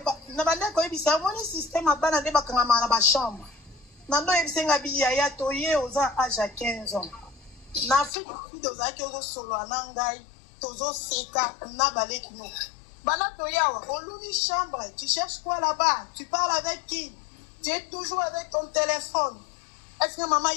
na bande ko ebisa moni système a bana de bakanga na ba chambre. Nando ebisenga biya toye aux âge à 15 ans. Na Afrique dos aki ozo solo anangai tozo seka na baleki no. Oluni chambre, tu cherches quoi là-bas? Tu parles avec qui? Tu es toujours avec ton téléphone. Est-ce que maman, il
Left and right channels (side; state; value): right; drops out; at 8.1 s